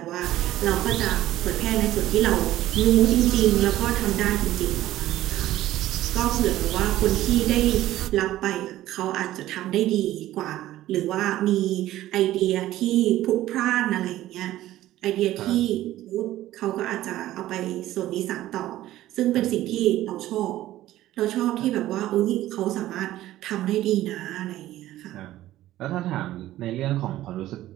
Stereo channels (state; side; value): quieter; left; 14.6 dB